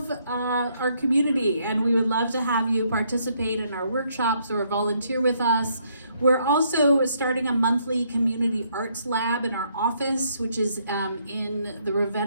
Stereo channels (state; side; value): inverted; both; correlation -0.71